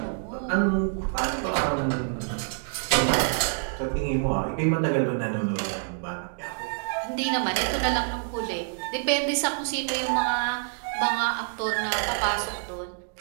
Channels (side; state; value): left; silent; digital silence